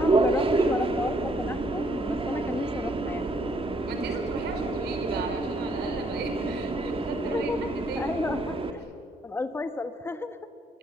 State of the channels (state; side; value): normal; both; correlation 0.68